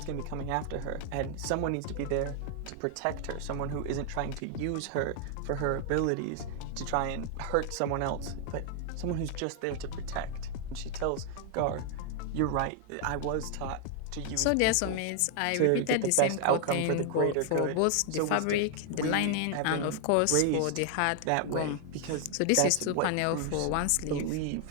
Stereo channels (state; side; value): different; both; correlation 0.00